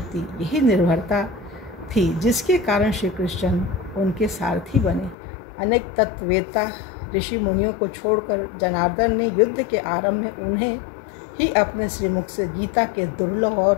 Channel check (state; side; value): drops out; right; at 5.2 s